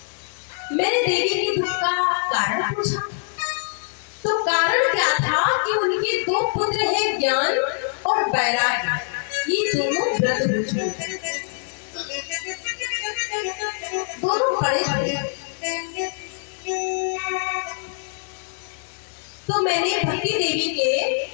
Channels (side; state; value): right; silent; digital silence